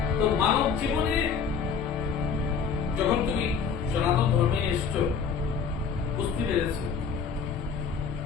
তো মানব জীবনে যখন তুমি সনাতন ধর্মে এসছো, বুঝতে পেরেছ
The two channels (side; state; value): right; quieter; 6.2 dB